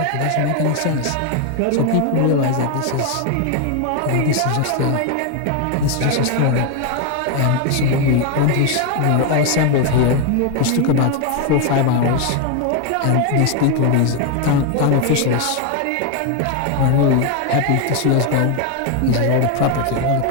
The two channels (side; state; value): both; different; correlation 0.01